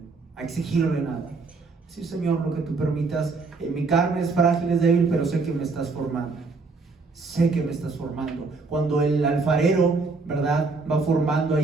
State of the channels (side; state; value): left; quieter; 4.1 dB